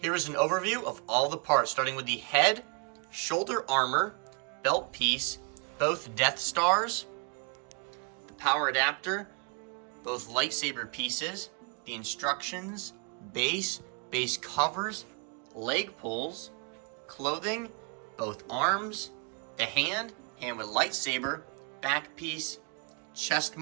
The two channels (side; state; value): left; quieter; 34.0 dB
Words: is an overview of all the parts, starting with the head shoulder armor, belt piece, both Death Stars, the power adapter, both lightsaber pieces, the instructions, base covers, leg pulls, clothing, both arms, the hand with lightsaber, back piece, chest